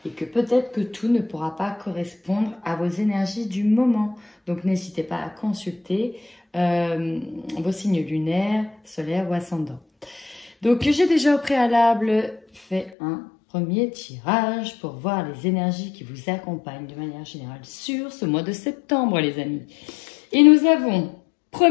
et que peut-être que tout ne pourra pas correspondre à vos énergies du moment. Donc, n'hésitez pas à consulter vos signes lunaires, solaires ou ascendants. Donc, j'ai déjà au préalable fait un premier tirage pour voir les énergies qui vous accompagnent de manière générale sur ce mois de septembre, les amis. Et nous avons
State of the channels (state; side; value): drops out; right; at 12.9 s